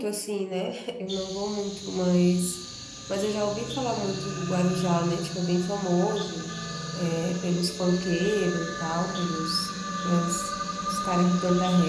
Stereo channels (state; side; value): identical; both; correlation 1.00